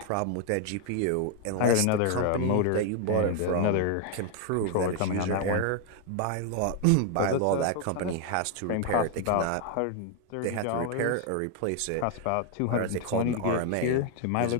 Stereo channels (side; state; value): both; different; correlation 0.01